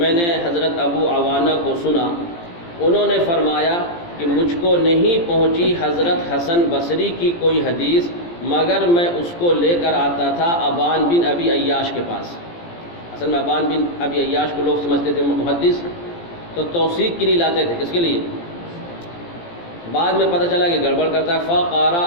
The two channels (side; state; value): right; late; 17 ms